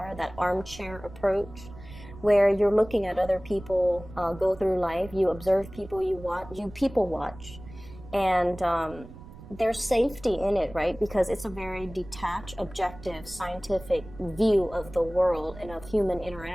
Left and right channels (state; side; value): noise; right; rumble, 17 dB below the sound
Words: that armchair approach, where you're looking at other people go through life. You observe people, you people watch, and there's safety in it, right? Because it's a very detached, objective, scientific view of the world and of human